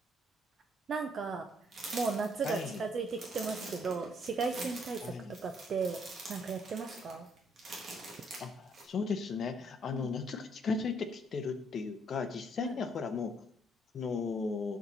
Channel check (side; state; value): both; normal; correlation 0.68